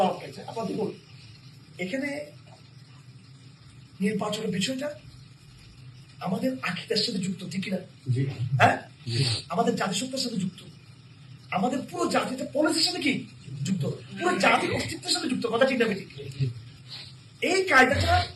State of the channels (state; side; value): identical; both; correlation 1.00